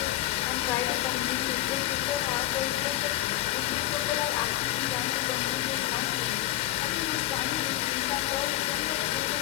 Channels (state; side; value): quieter; right; 14.9 dB